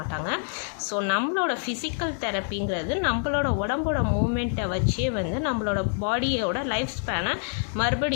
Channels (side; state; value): right; silent; 61 dB below the other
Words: ஸோ நம்மளோட ஃபிசிக்கல் தெரப்பிங்கிறது நம்மளோட உடம்போட மூமெண்ட்டை வச்சே நம்மளோட பாடியோட லைஃப் ஸ்பேனை